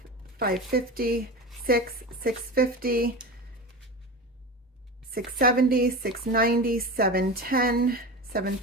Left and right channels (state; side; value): normal; both; correlation 0.27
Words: 550, 6, 650, 670, 690, 710,